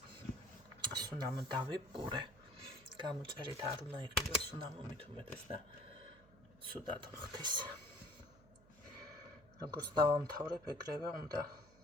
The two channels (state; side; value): noise; right; hum, 25 dB below the sound